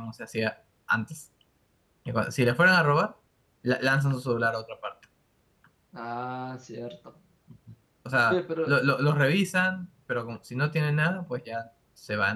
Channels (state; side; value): identical; both; correlation 1.00